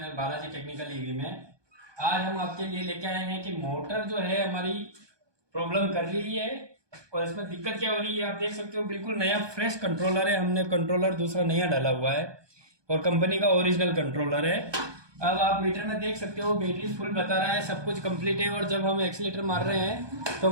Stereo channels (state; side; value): late; left; 1.2 ms